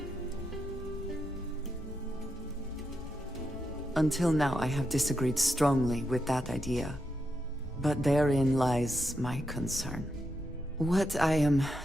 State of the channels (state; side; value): normal; both; correlation 0.84